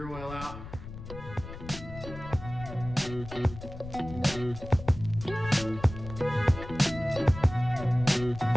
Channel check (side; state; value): left; noise; rumble, 12 dB below the sound